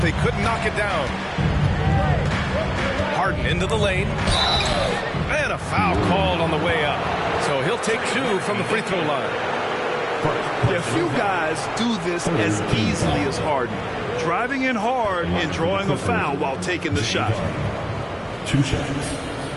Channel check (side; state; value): both; identical; correlation 1.00